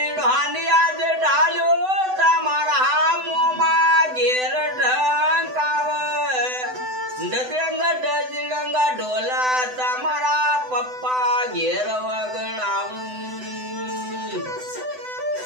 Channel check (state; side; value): late; left; 7.9 ms